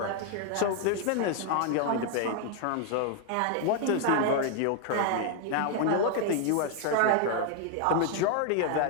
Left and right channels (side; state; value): both; different; correlation 0.00